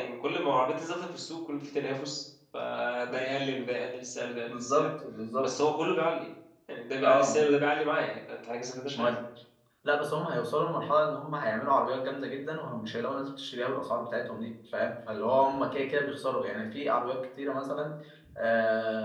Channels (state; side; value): identical; both; correlation 1.00